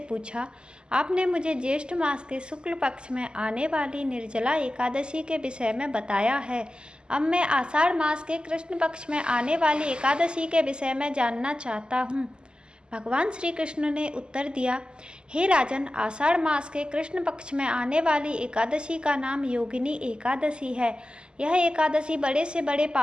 आपने मुझे ज्येष्ठ मास के शुक्ल पक्ष में आने वाली निर्जला एकादशी के विषय में बताया है। अब मैं आषाढ़ मास के कृष्ण पक्ष में आने वाली एकादशी के विषय में जानना चाहता हूँ। भगवान श्री कृष्ण ने उत्तर दिया, हे राजन, आषाढ़ मास के कृष्ण पक्ष में आने वाली एकादशी का नाम योगिनी एकादशी है। यह एकादशी बड़े से बड़े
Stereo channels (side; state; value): left; late; 0.048 ms